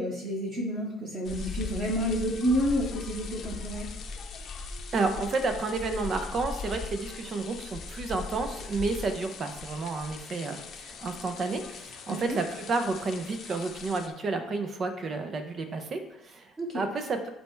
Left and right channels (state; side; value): normal; both; correlation 0.65